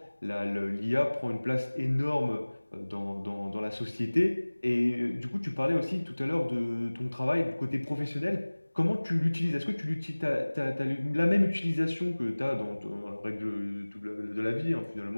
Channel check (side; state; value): both; inverted; correlation -1.00